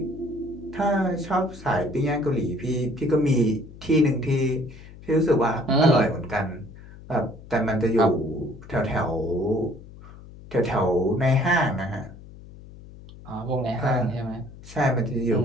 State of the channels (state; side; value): noise; left; hum, 18 dB below the sound